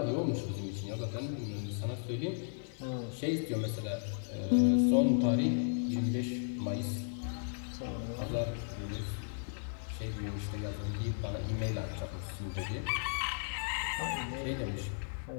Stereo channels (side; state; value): right; silent; digital silence